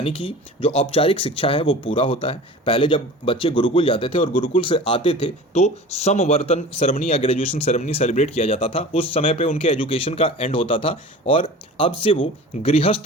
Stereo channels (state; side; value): normal; both; correlation 0.38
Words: कि जो औपचारिक शिक्षा है वो पूरा होता है। पहले जब बच्चे गुरुकुल जाते थे और गुरुकुल से आते थे तो समवर्तन सेरेमनी या ग्रेजुएशन सेरेमनी सेलिब्रेट किया जाता था। उस समय पे उनके एजुकेशन का एंड होता था और अब से वो